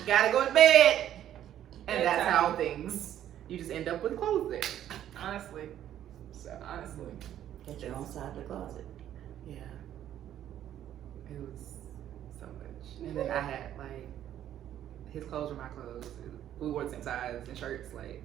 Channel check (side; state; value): left; quieter; 11.2 dB